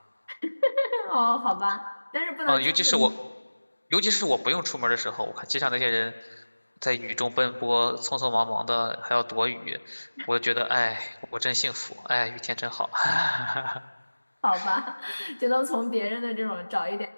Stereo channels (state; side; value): inverted; both; correlation -1.00